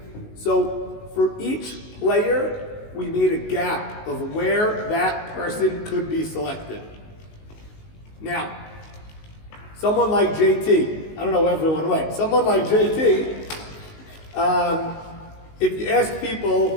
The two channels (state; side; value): late; right; 19 ms